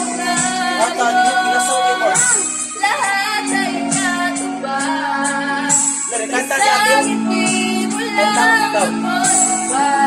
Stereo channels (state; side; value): identical; both; correlation 1.00